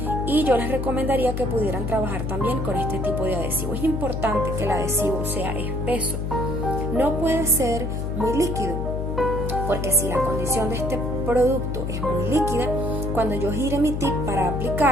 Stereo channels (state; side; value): noise; left; hum, 2 dB below the sound